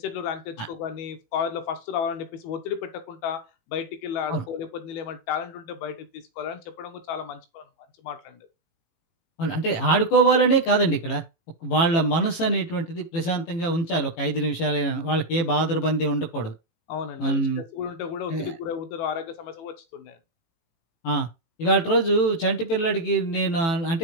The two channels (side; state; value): right; late; 18 ms